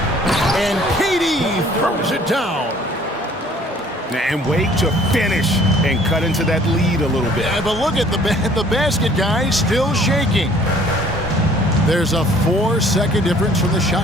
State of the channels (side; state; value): both; normal; correlation 0.55